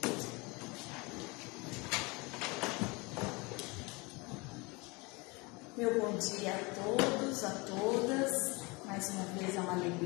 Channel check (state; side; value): quieter; right; 26.7 dB